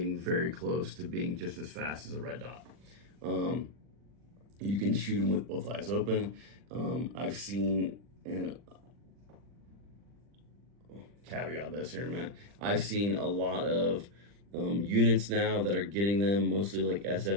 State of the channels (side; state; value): left; late; 40 ms